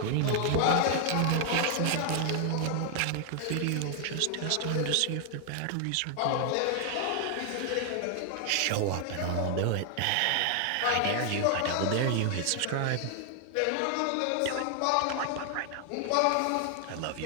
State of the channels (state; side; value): different; both; correlation 0.00